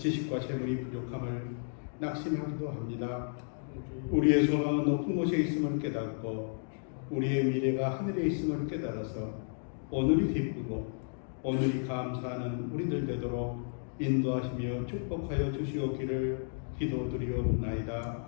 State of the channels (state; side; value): silent; right; digital silence